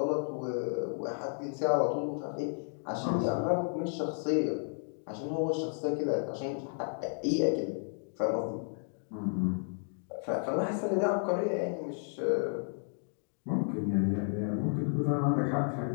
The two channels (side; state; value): right; silent; 56 dB below the other